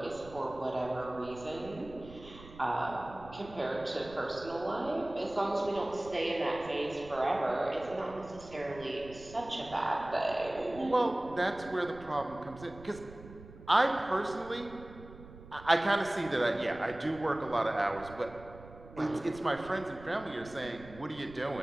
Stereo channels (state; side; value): noise; right; rumble, 17 dB below the sound